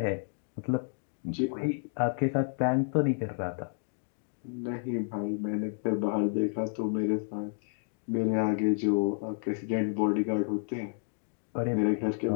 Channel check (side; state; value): right; silent; digital silence